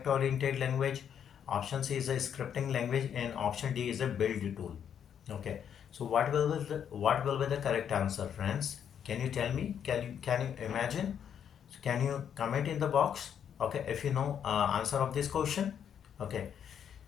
oriented language. Option C is a scripting language, and option D is a build tool. Okay, so what will be the correct answer, friends? Can you tell me? Can you imagine? So can you comment in the box? Okay, if you know answer of this question. Okay,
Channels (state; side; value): quieter; right; 8.6 dB